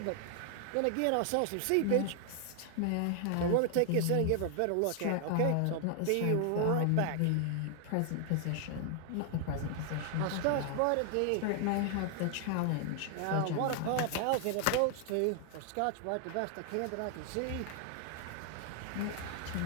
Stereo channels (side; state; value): both; different; correlation 0.00